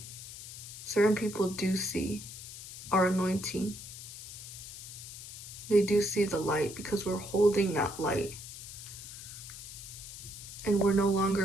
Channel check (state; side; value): noise; left; hiss, 12 dB below the sound